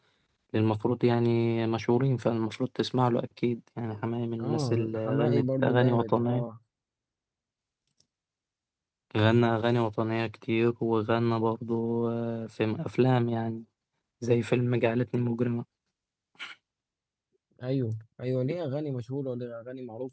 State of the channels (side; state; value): both; identical; correlation 1.00